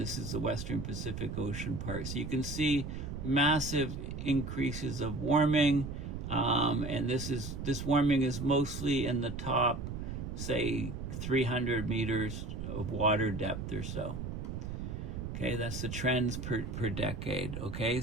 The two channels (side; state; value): right; noise; rumble, 6 dB below the sound